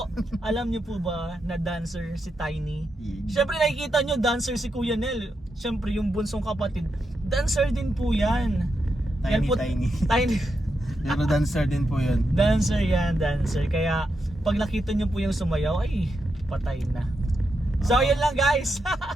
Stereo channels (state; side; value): normal; both; correlation 0.85